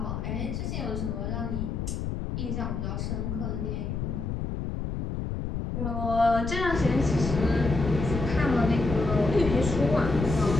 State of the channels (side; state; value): left; noise; rumble, 3 dB below the sound